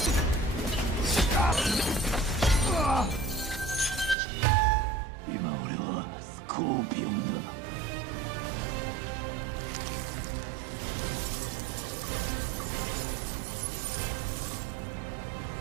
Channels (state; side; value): drops out; left; at 4.2 s